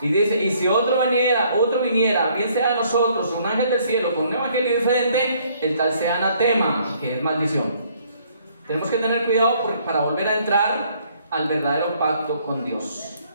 Y dice, y si otro viniera, bien sea de nosotros, un ángel del cielo con un evangelio diferente, el tal sea anatema, que es maldición. Tenemos que tener cuidado para volver a entrar al verdadero pacto con Dios.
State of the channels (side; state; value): both; inverted; correlation -0.64